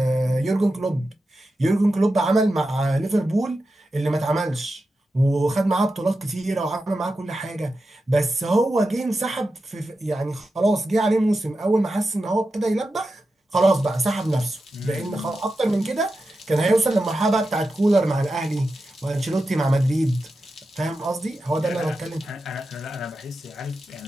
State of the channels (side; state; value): both; normal; correlation 0.91